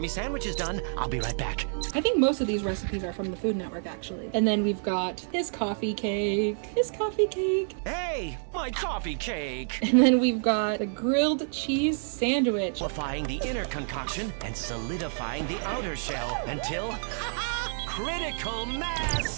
sandwich is done. I'll be right back. I think most of these recipes are from the Food Network, actually. And then we've got his coffee cake. Hey, my coffee cake. And then we've got the grilled cheese sandwich. Amplifying the inner concoction and solidifying the outer shell until critical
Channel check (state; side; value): silent; left; digital silence